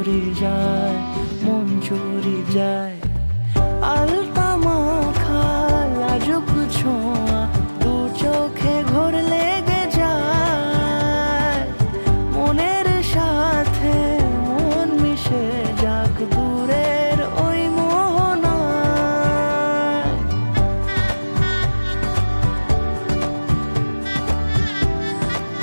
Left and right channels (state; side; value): inverted; both; correlation -1.00